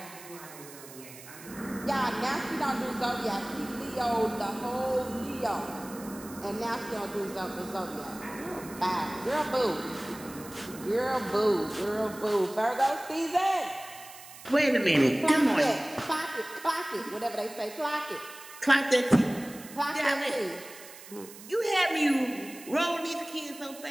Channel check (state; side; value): noise; right; hiss, 17 dB below the sound